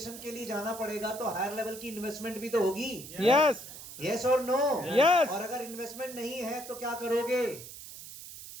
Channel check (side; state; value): right; noise; hiss, 13 dB below the sound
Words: के लिए जाना पड़ेगा तो हायर लेवल की इन्वेस्टमेंट भी तो होगी। यस। यस और नो? यस। और अगर इन्वेस्टमेंट नहीं है तो क्या करोगे?